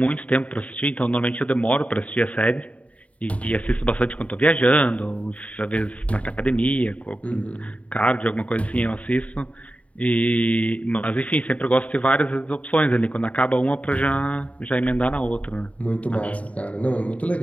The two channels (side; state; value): right; late; 0.066 ms